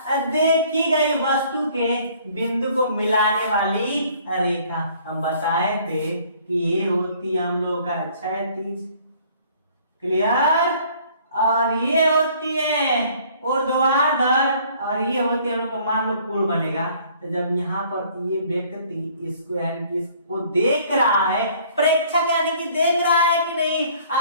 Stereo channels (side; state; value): both; inverted; correlation -0.57